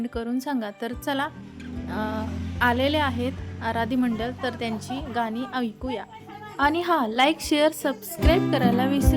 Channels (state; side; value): identical; both; correlation 1.00